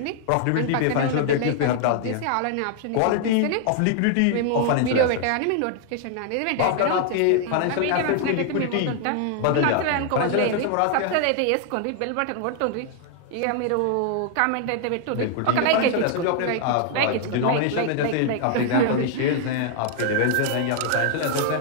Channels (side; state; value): both; different; correlation 0.00